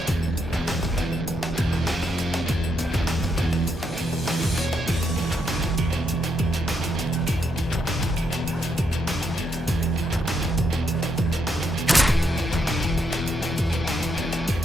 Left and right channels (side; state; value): both; normal; correlation 0.78